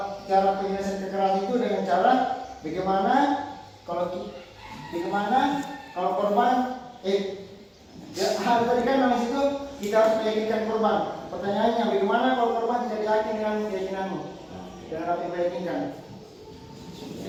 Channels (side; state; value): both; identical; correlation 1.00